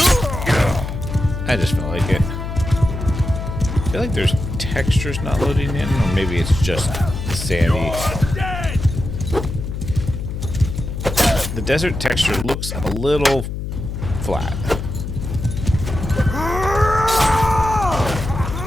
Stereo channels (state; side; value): noise; left; hum, 5 dB below the sound